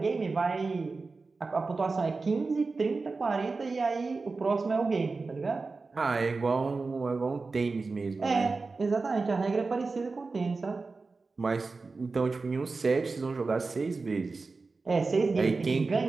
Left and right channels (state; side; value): quieter; left; 4.0 dB